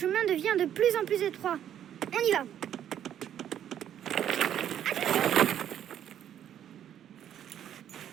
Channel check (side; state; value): left; quieter; 10.2 dB